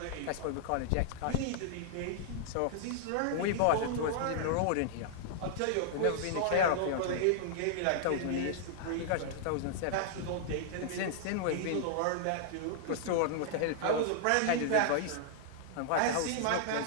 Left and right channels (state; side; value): different; both; correlation -0.01